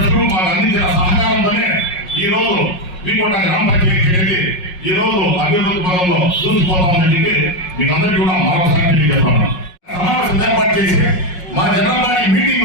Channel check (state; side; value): late; right; 5.5 ms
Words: మాకు అందించిన సహకారంతోనే ఈ రోజు వీకోట గ్రామ పంచాయతీ అనేది ఈ రోజు అభివృద్ధి పదంలో చూసిపోతామని చెప్పి మీకు అందరికీ కూడా మరొకసారి చెప్తాను. సమావేశం ఏర్పాటు చేసి మా జనరల్ బాడీ మీటింగ్